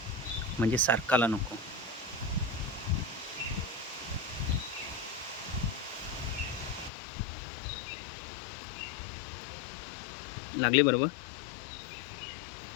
म्हणजे सारखाला नको. लागली बरोबर.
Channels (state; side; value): drops out; right; at 6.9 s